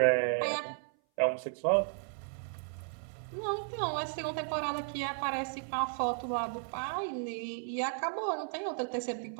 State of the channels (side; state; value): left; silent; 55 dB below the other